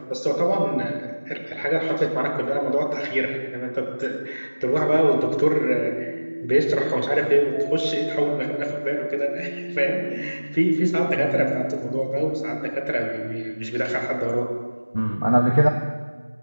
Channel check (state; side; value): inverted; both; correlation -1.00